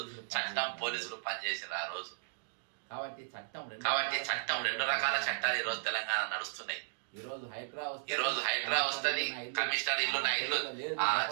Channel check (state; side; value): silent; left; digital silence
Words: చట్టం పోలీసులు పనిచేసారు ఆ రోజు. కాబట్టి చట్టం రెండు రకాల చట్టాలు ఈ రోజు తెలంగాణ నడుస్తున్నాయి. ఈరోజు హైడ్రా వస్తుంది, కమిషనర్ ఇల్లు నా ఇల్లు